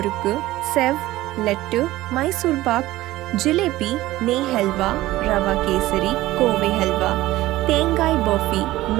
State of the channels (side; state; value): left; quieter; 16.8 dB